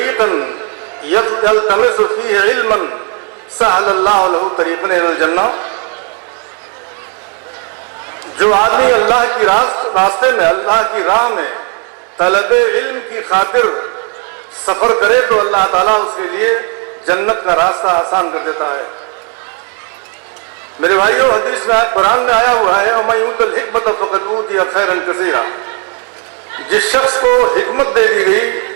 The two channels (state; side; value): quieter; left; 34.7 dB